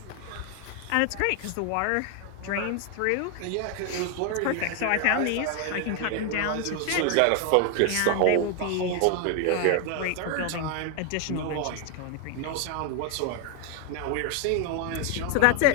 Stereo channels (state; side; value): different; both; correlation 0.01